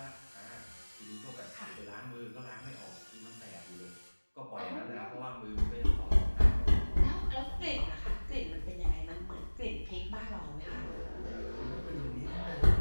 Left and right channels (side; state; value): both; inverted; correlation -1.00